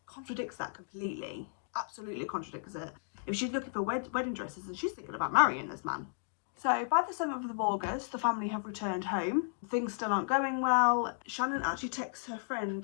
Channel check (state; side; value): silent; right; digital silence